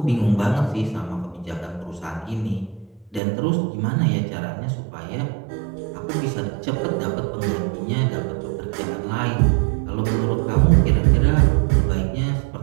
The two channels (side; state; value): left; drops out; at 3.2 s